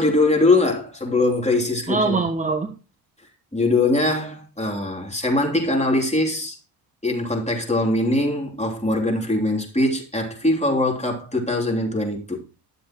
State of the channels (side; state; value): both; normal; correlation 0.46